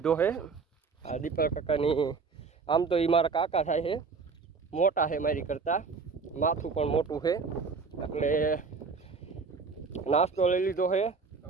છે. આ દીપક કાકાની, આમ તો એ મારા કાકા થાય છે, મોટા છે મારી કરતાં, માથું પણ મોટું છે, એટલે નાસ્તો લઈ લીધો છે.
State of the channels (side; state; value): left; quieter; 4.9 dB